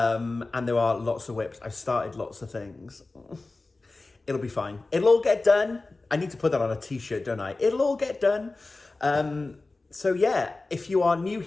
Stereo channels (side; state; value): right; quieter; 3.3 dB